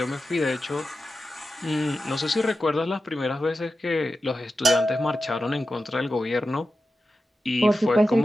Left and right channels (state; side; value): normal; both; correlation 0.92